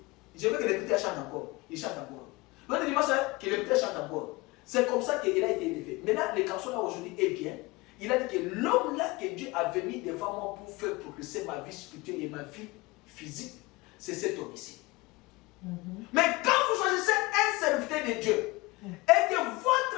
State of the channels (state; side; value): quieter; right; 22.8 dB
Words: Je veux que le petit chante encore. Il chante encore. L'autre dimanche, que le petit chante encore. C'est comme ça qu'il a été élevé. Maintenant, le canson là aujourd'hui est bien. Il a dit que l'homme là que Dieu avait mis devant moi pour faire progresser ma vie spirituelle et ma vie physique, c'est cet homme ici. Mais quand vous choisissez un serviteur de Dieu et que